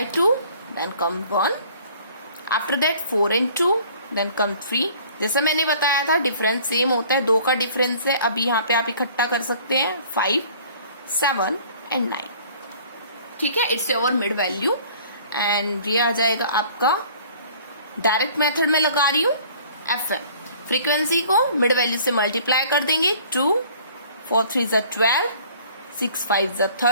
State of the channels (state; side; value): inverted; both; correlation -0.52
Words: 2, then come 1, after that 4 and 2, then come 3। जैसा मैंने बताया था डिफरेंस सेम होता है, 2 का डिफरेंस है। अभी यहाँ पे आप इकट्ठा कर सकते हैं 5, 7 and 9, ठीक है? It's your mid value, and ये आ जाएगा आपका, डायरेक्ट मेथड में लगा रही हूँ, FM। फ्रीक्वेंसी को मिड वैल्यू से मल्टीप्लाई कर देंगे, 2, 4 3 ज़ा 12, 6 5 ज़ा